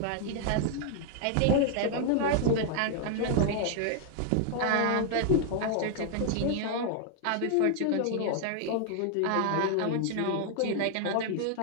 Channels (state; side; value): different; both; correlation 0.00